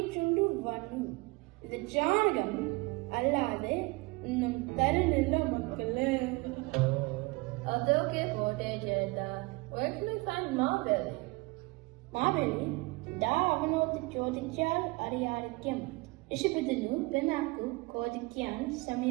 വന്നു. ഇത് ചാണകം അല്ലാതെ ഒന്നും തരുന്നില്ല മക്കള്. അതൊക്കെ പോട്ടെ ചേട്ടാ. Where can we find Maveli? Maveli ദാ അവനോട് ചോദിച്ചാൽ അറിയാതിരിക്കും. ഋഷഭത്തിനു പിന്നാക്കു ചോദിക്കാൻ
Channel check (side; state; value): left; quieter; 24.9 dB